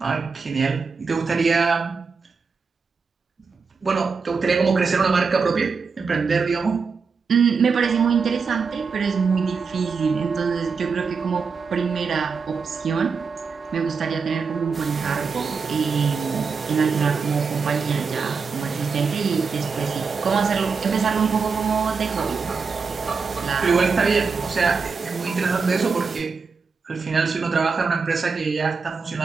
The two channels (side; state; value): left; quieter; 5.1 dB